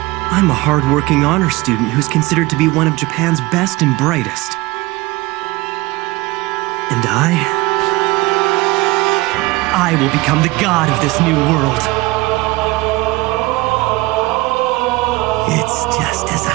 I'm a hardworking honor student who's considered to be one of Japan's best and brightest. And I will become the god of this new world. It's just as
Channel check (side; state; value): left; quieter; 21.1 dB